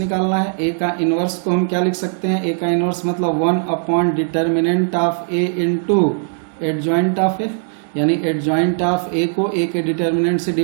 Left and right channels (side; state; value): left; silent; digital silence